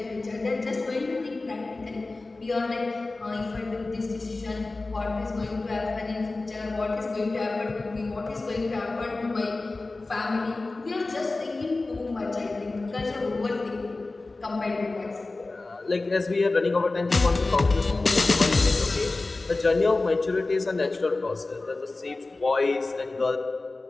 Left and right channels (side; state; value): right; quieter; 3.3 dB